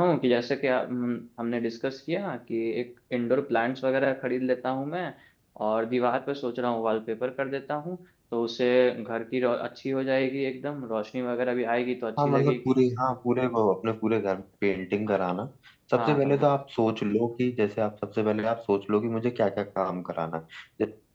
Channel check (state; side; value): identical; both; correlation 1.00